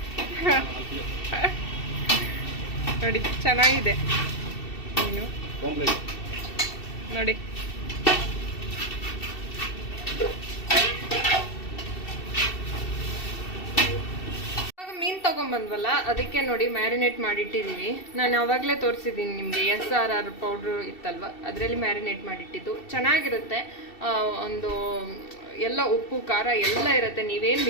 ನೋಡಿ ಚೆನ್ನಾಗಿದೆ ಮೀನು ನೋಡಿ. ಮೀನು ತೊಗೊಂಬಂದ್ವಲ್ಲ, ಅದಕ್ಕೆ ನೋಡಿ ಮ್ಯಾರಿನೇಟ್ ಮಾಡಿಟ್ಟಿದ್ದೀವಿ. ನಾನು ಆವಾಗಲೇ ತೋರಿಸಿದ್ದೀನಿ ನಿಮಗೆ, SRR ಪೌಡ್ರು ಇತ್ತಲ್ವ, ಅದರಲ್ಲಿ ಮ್ಯಾರಿನೇಟ್ ಮಾಡಿಟ್ಟಿದ್ದು. ಚೆನ್ನಾಗಿರುತ್ತೆ. ಒಂದು ಎಲ್ಲ ಉಪ್ಪು ಖಾರ ಎಲ್ಲ ಇರುತ್ತೆ, ನೀವೇನು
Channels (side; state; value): right; late; 2.7 ms